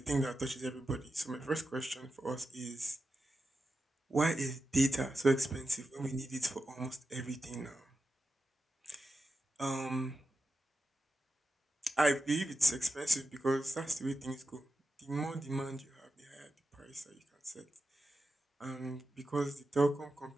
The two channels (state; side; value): normal; both; correlation 0.91